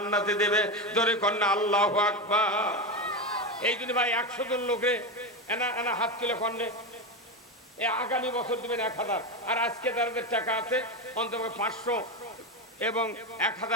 দেবে, ধরে কন্যা আল্লাহু আকবার। এই জন্য ভাই 100 জন লোকে এনা হাত তুলে কন্যা আগামী বছর দেবেন 1000, আর আজকে যাদের টাকা আছে অন্তত 500 এবং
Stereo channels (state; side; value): normal; both; correlation 0.15